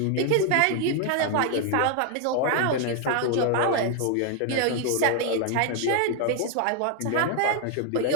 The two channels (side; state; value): both; different; correlation 0.00